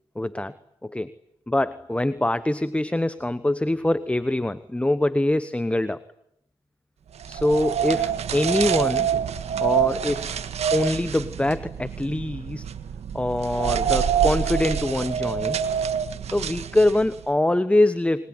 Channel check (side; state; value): both; normal; correlation 0.74